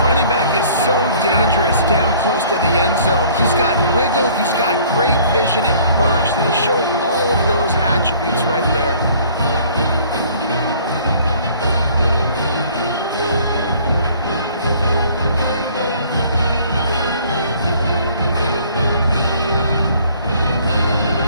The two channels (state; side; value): inverted; both; correlation -0.55